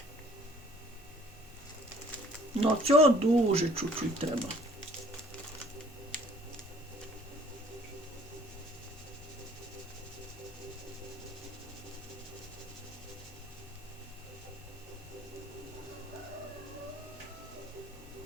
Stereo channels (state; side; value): normal; both; correlation 0.55